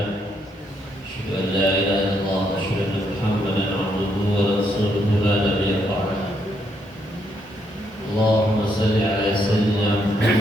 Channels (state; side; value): normal; both; correlation 0.75